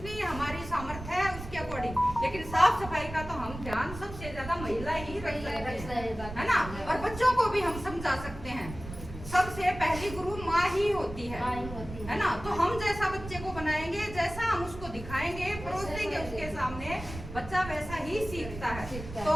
हमारी सामर्थ्य है उसके अकॉर्डिंग, लेकिन साफ सफाई का तो हम ध्यान सबसे ज्यादा महिला ही रख सकते हैं, है ना। और बच्चों को भी हम समझा सकते हैं, सबसे पहली गुरु माँ ही होती है ना। तो हम जैसा बच्चे को बनाएंगे, जैसा हम उसको दिखाएंगे, परोस देंगे उसके सामने, बच्चा वैसा ही सीखता है।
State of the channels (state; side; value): noise; right; rumble, 11 dB below the sound